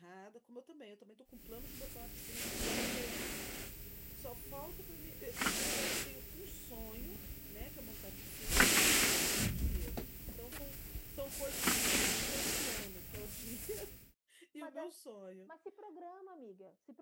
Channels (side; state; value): both; identical; correlation 1.00